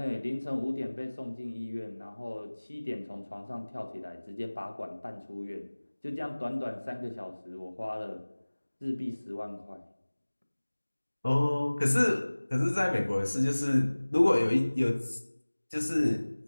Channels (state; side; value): inverted; both; correlation -1.00